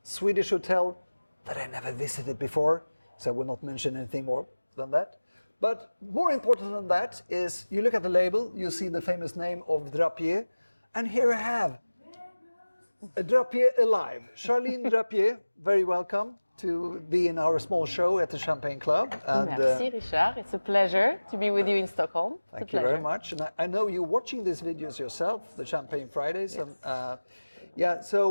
Swedish hotel that I never visited before, so I will not mention anything more than that. But more important than that is, you look at the label, you see the famous name of Drappier, and here I have a Drappier alive. Charline Drappier, very welcome to be in our small show at the Champagne Club. And, Merci, Richard. It's a pleasure to be with you in Stockholm. Thank you very much. And I know you're watching these videos yourself, the Champagne Fridays. Yes. And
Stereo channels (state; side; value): inverted; both; correlation -1.00